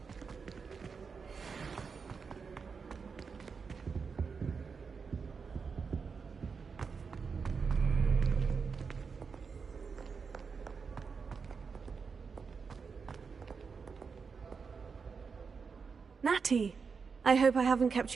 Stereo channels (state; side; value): quieter; left; 5.4 dB